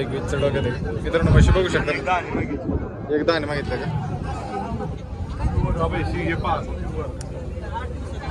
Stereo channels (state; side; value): identical; both; correlation 1.00